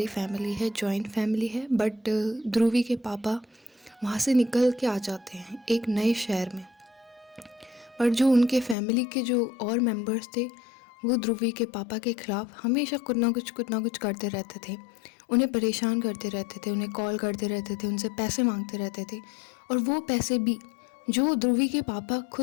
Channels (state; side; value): drops out; right; at 8.8 s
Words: फैमिली है, जॉइंट फैमिली है, बट ध्रुवी के पापा वहाँ से निकल के आ जाते हैं एक नए शहर में। पर जो उनके फैमिली के जो और मेंबर्स थे, वो ध्रुवी के पापा के खिलाफ हमेशा कुछ ना कुछ करते रहते थे। उन्हें परेशान करते रहते थे, उन्हें कॉल करते रहते थे, उनसे पैसे मांगते रहते थे, और वो पैसे भी जो ध्रुवी के पापा